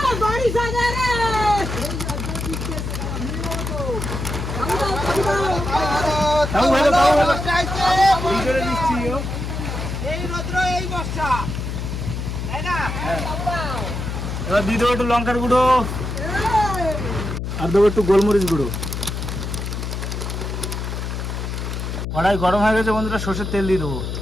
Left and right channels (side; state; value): left; noise; hum, 4 dB below the sound